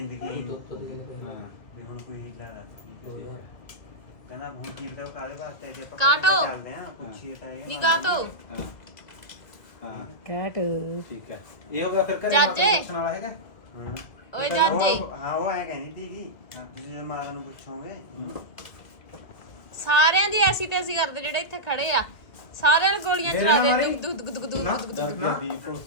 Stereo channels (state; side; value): late; right; 1.9 ms